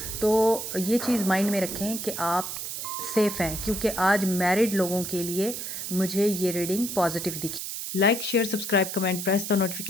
तो ये चीज़ माइंड में रखें कि आप सेफ़ हैं, क्योंकि आज मैरिड लोगों के लिए मुझे ये रीडिंग पॉजिटिव दिखी। Like, share, subscribe, comment, press the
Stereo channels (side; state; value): right; noise; hiss, 6 dB below the sound